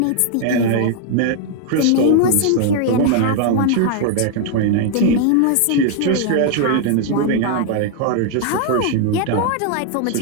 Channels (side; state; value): both; different; correlation 0.00